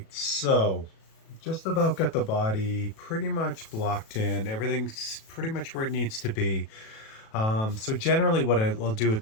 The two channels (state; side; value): late; right; 37 ms